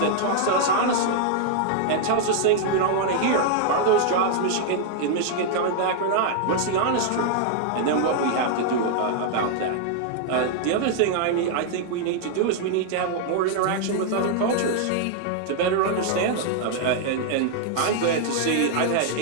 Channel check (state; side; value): different; both; correlation 0.00